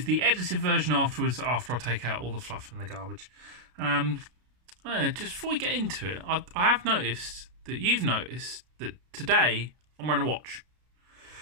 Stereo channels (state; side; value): late; left; 33 ms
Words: the edited version afterwards, after I take out all the fluff and the garbage. Just before we get into it, I have noticed that you've noticed that today I'm wearing a watch.